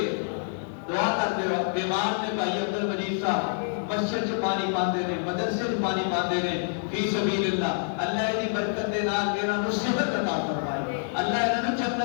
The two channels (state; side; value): silent; right; 58 dB below the other